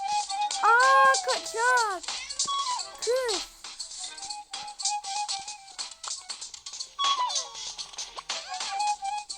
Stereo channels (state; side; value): identical; both; correlation 1.00